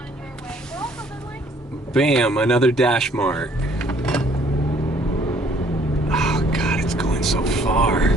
your way. But also then, like, Bam, another DashMart. Oh God, it's going so far.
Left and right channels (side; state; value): both; normal; correlation 0.61